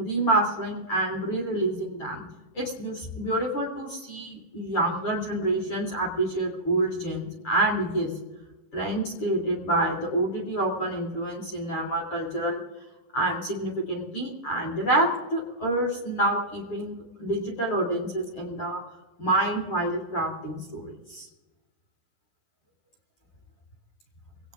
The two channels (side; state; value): right; late; 8.4 ms